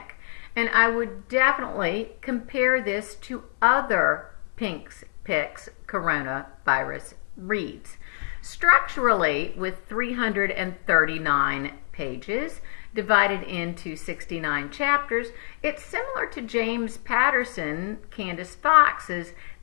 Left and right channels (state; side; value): silent; right; 61 dB below the other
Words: And I would definitely compare this to other Pink's Picks coronavirus reads. Structurally, with 339 pages divided into 69 chapters, it's similar to James Patterson, Candace Fox's